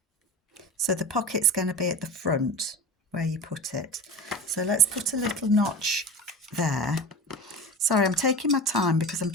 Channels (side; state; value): both; normal; correlation 0.30